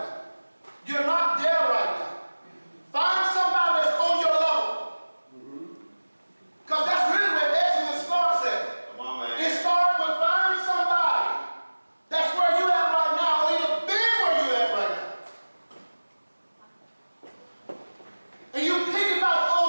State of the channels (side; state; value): both; inverted; correlation -1.00